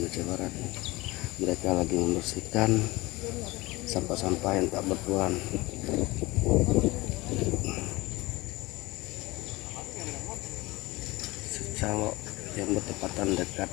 Aceh Barat. Mereka lagi membersihkan sampah-sampah yang tak bertuan. Calok yang bertepatan dekat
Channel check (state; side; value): quieter; right; 21.3 dB